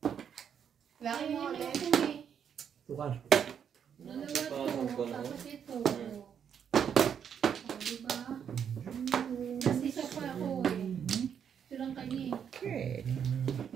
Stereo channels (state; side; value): quieter; left; 8.0 dB